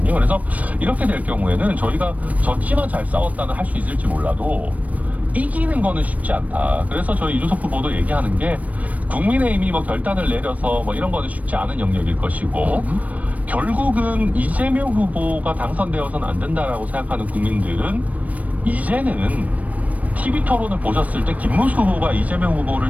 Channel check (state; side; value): late; left; 0.070 ms